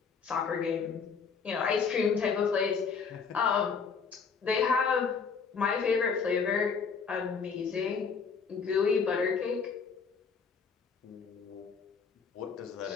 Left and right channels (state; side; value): quieter; right; 5.7 dB